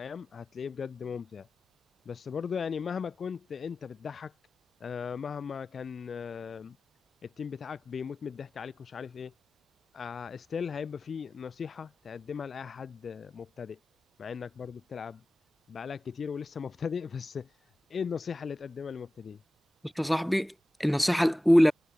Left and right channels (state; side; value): normal; both; correlation 0.96